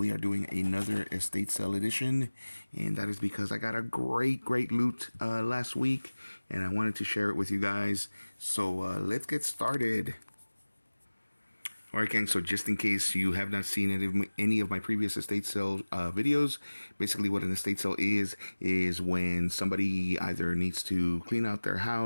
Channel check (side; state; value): both; inverted; correlation -1.00